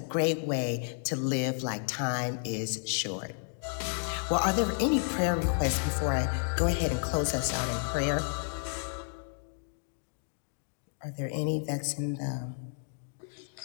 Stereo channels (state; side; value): silent; right; digital silence